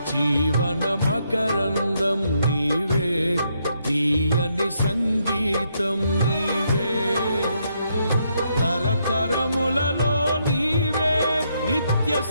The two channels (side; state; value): both; inverted; correlation -0.77